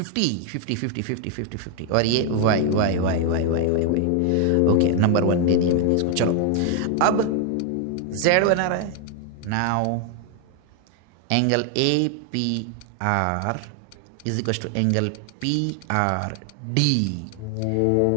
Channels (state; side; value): different; both; correlation 0.00